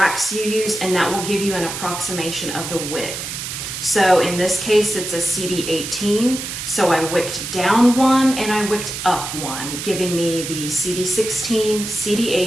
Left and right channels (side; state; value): right; noise; hiss, 6 dB below the sound